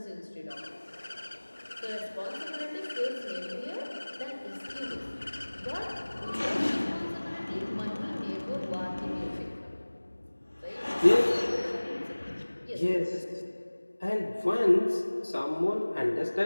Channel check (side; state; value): both; inverted; correlation -1.00